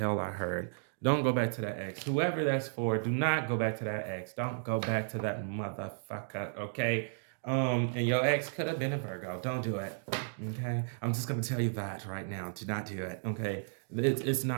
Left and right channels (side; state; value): left; silent; digital silence